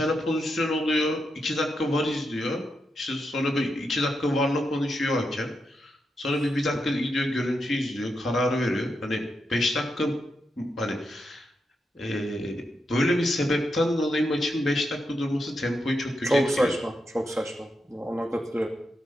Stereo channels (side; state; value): both; normal; correlation 0.85